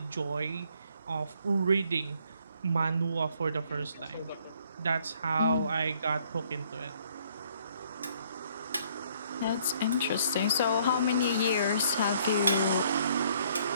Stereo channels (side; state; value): both; inverted; correlation -0.64